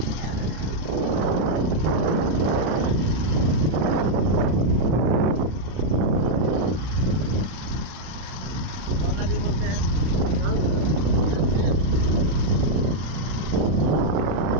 कौन नदी बोलते हैं?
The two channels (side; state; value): left; late; 32 ms